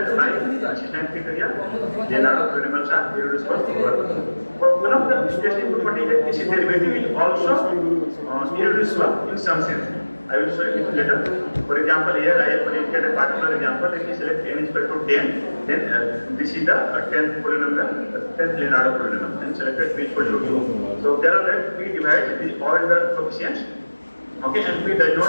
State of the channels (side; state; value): both; inverted; correlation -1.00